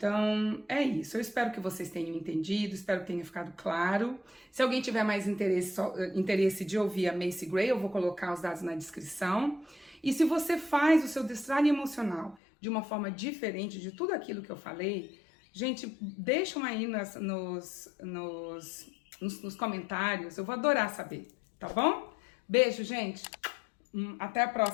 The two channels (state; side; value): drops out; right; at 12.4 s